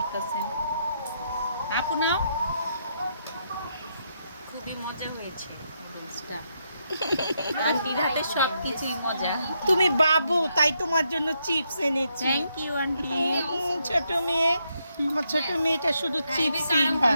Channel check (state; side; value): inverted; both; correlation -0.79